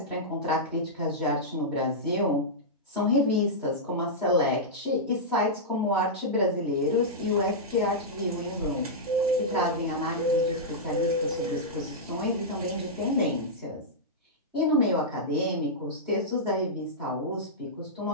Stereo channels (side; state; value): both; normal; correlation -0.11